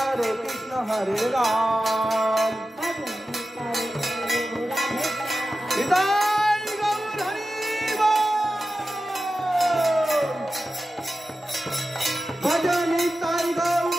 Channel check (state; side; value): normal; both; correlation 0.93